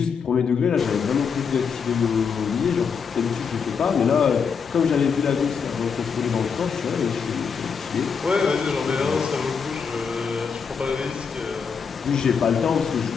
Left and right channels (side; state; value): right; quieter; 6.1 dB